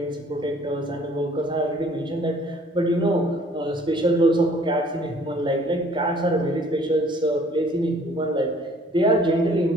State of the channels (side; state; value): both; normal; correlation 0.56